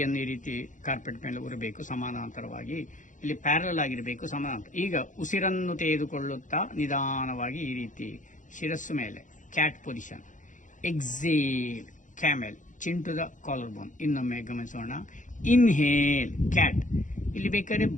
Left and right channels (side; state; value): right; late; 0.37 ms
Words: ಈ ರೀತಿ ಕಾರ್ಪೆಟ್ ಮೇಲೆ ಉರಬೇಕು ಸಮಾನಾಂತರವಾಗಿ. ಇಲ್ಲಿ ಪ್ಯಾರಲ್ ಆಗಿರಬೇಕು ಸಮಾನಾಂತರ. ಈಗ ಉಸಿರನ್ನು ತೆಗೆದುಕೊಳ್ಳುತ್ತಾ ನಿಧಾನವಾಗಿ ಈ ರೀತಿ ಶಿರಸ್ಸು ಮೇಲೆ cat position. Exhale camel, chin to the collar bone. ಇನ್ನೊಮ್ಮೆ ಗಮನಿಸೋಣ. Inhale cat. ಇಲ್ಲಿ ಬೇಕಾದ್ರೆ